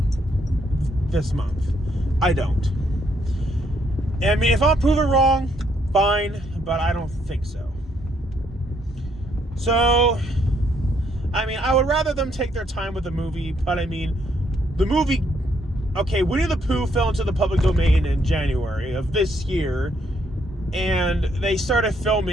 this month. I don't. I mean, if I'm proven wrong, fine, but I don't think so. So, I mean, I would rather them take their time with the movie, but I mean, the movie, okay, Winnie the Pooh fell into the public domain in January of this year, and they started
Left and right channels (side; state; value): both; normal; correlation 0.72